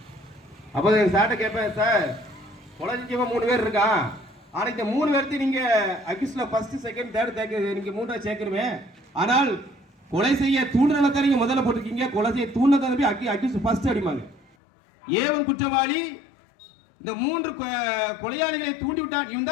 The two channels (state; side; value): drops out; right; at 14.5 s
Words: அப்போ சார்ட்ட கேட்பேன், சார் கொலை செஞ்சவன் 3 பேர் இருக்கான், ஆனால் இந்த 3 பேர்த்து நீங்க அக்யூஸ்ட்ல ஃபர்ஸ்ட், செகண்ட், தேர்ட் நீங்க 3 சேர்க்கணுமே, ஆனால் கொலை செய்ய தூண்டுதலை நீங்க முதல்ல போட்டிருக்கீங்க, கொலை செய்ய தூண்டுதலை அக்யூஸ்ட் ஃபர்ஸ்ட் அடிமாங்க. ஏவன் குற்றவாளி, இந்த 3 கொலையாளிகளை தூண்டிவிட்டான், இவன்